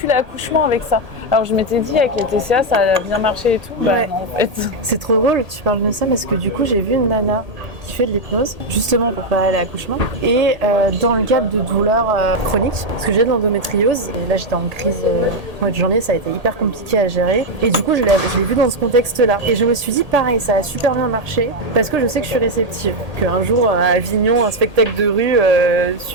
l'accouchement avec ça. Alors je m'étais dit avec les TCA ça a bien marché et tout. Bah non, en fait. C'est trop drôle que tu parles de ça parce que du coup j'ai vu une nana qui fait de l'hypnose justement pour préparer l'accouchement et dans le cadre de douleurs chroniques parce que j'ai de l'endométriose et là j'étais en crise au mois de janvier, ça a été hyper compliqué à gérer et du coup je l'ai vu dans ce contexte là et je me suis dit pareil, ça a super bien marché parce que je sais que je suis réceptive, qu'un jour à Avignon un spectacle de rue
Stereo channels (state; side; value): late; left; 1.8 ms